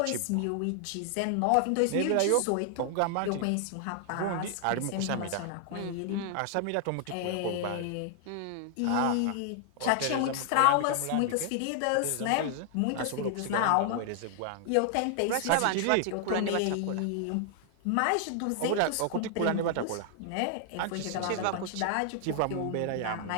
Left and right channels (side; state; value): both; different; correlation 0.00